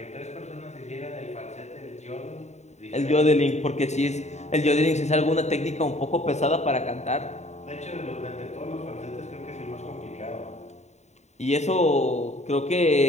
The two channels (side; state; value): right; late; 0.33 ms